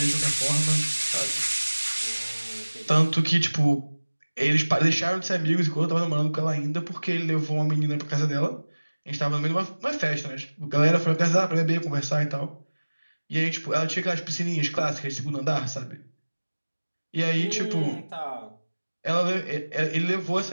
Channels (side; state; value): both; inverted; correlation -1.00